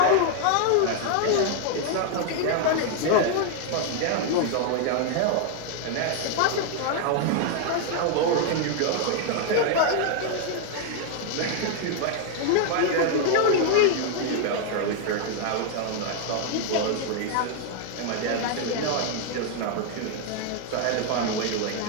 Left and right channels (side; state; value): both; different; correlation 0.00